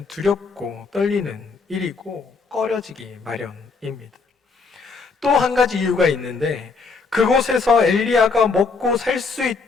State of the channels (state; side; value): quieter; right; 4.6 dB